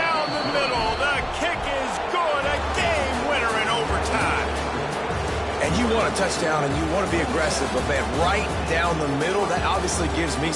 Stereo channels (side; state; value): both; identical; correlation 1.00